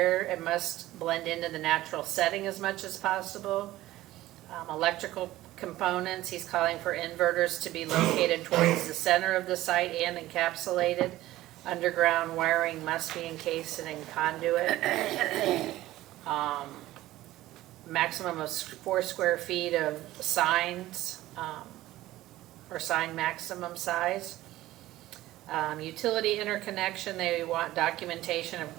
it must blend into the natural setting as much as possible. Electrical components, he's calling for inverters to be located towards the center of the site and encapsulated. Underground wiring must be encased in conduit. Maximum of 4 square feet of signs, or sign maximum size. Utility interconnection, they want documentation of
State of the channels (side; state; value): left; quieter; 16.0 dB